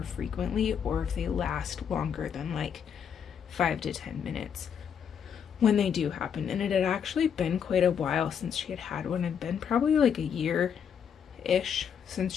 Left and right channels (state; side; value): quieter; right; 7.7 dB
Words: frequently, or if they last longer than like 5 to 10 minutes when they do happen. And it had actually been quite a while since she had one. It had been probably like a year-ish since